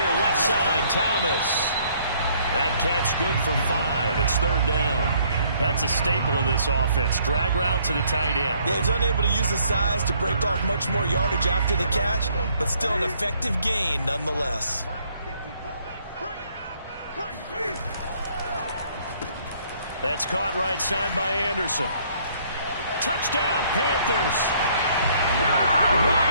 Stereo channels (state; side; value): inverted; both; correlation -0.64